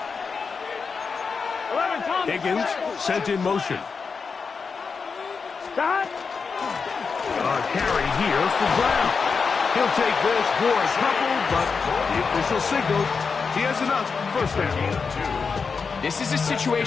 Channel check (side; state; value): right; quieter; 5.3 dB